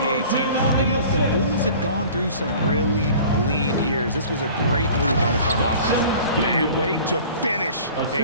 team. And look, the Bulls had gone through some really lean years. This was a great move by the front office. And wait to finish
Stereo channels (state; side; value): inverted; both; correlation -0.45